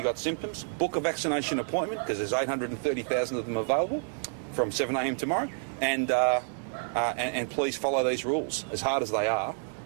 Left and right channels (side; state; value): left; silent; 58 dB below the other